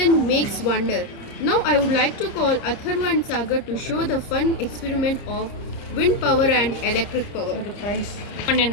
makes wonder. Now I would like to call Atharva and Sagar to show the fun experiment of wind power and electric power. One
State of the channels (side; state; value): right; late; 29 ms